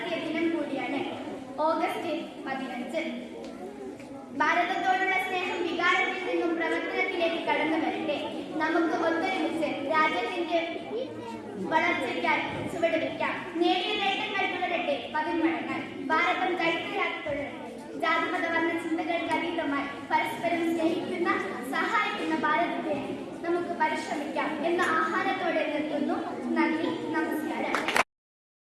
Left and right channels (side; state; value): both; identical; correlation 1.00